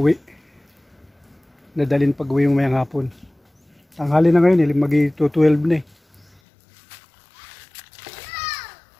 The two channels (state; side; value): drops out; right; at 6.4 s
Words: Nadalin pag-uwi yung mayang hapon. Tanghali na ngayon, mag-12 na eh.